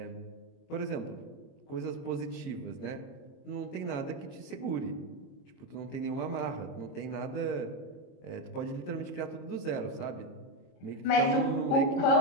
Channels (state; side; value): late; right; 22 ms